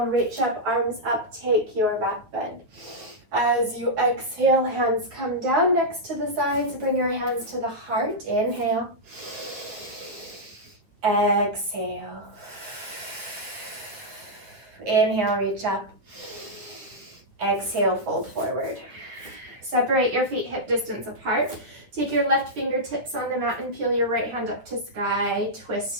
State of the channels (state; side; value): late; left; 9.3 ms